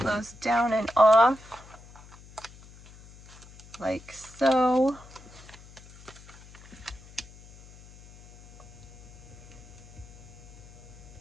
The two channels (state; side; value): noise; left; hum, 20 dB below the sound